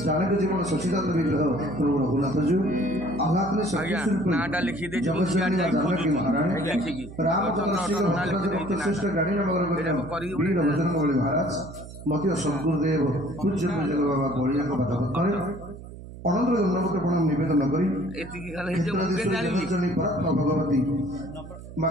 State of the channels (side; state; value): right; noise; hum, 14 dB below the sound